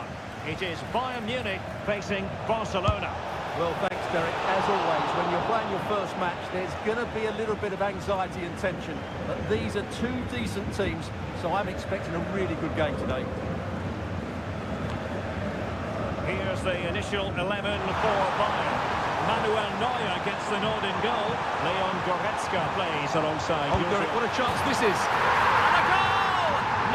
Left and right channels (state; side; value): identical; both; correlation 1.00